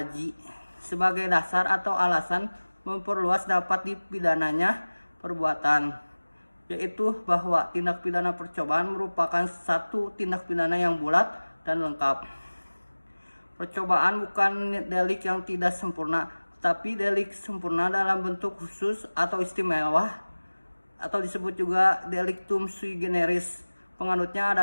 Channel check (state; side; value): inverted; both; correlation -1.00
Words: sebagai dasar atau alasan memperluas dapat dipidananya perbuatan, yaitu bahwa tindak pidana percobaan merupakan satu tindak pidana yang bulat dan lengkap. Percobaan bukan delik yang tidak sempurna, tapi delik sempurna dalam bentuk khusus atau istimewa, atau disebut juga delictum sui generis. Penganutnya